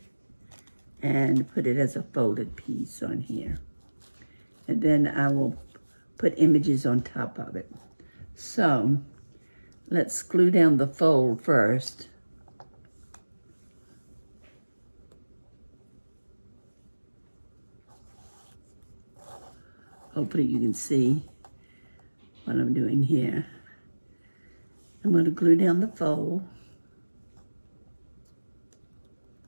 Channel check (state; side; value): inverted; both; correlation -1.00